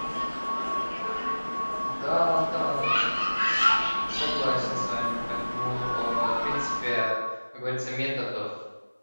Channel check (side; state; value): both; inverted; correlation -1.00